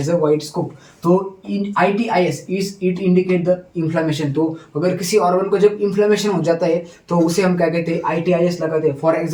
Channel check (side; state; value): both; identical; correlation 1.00